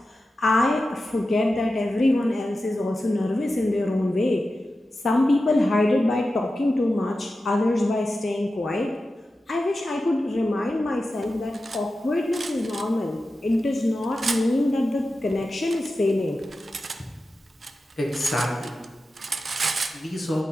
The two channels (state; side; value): normal; both; correlation 0.92